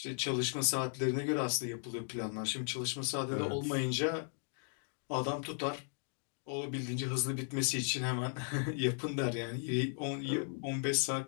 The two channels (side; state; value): right; silent; 54 dB below the other